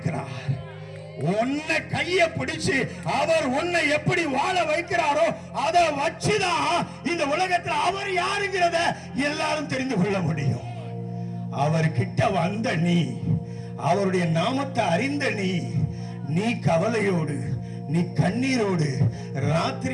உன்னை கைய பிடிச்சு அவர் உன்னை எப்படி வாழ வைக்கிறாரோ அதை வச்சுதான் இந்த உலகத்தில் அவர் யாருங்கிறத எல்லாரும் தெரிந்து கொள்ள முடியும். அவர் கிட்ட வந்த நீ, அவருடைய நாமத்தை அறிந்த நீ கவலையோடு, நீ கண்ணீரோடு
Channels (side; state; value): both; identical; correlation 1.00